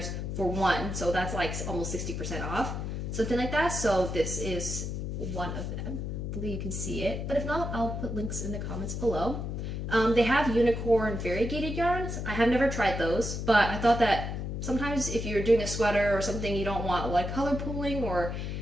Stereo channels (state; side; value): noise; left; hum, 4 dB below the sound